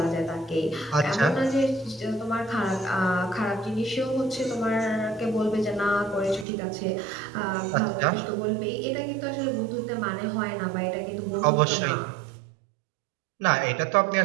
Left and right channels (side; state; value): left; drops out; at 6.5 s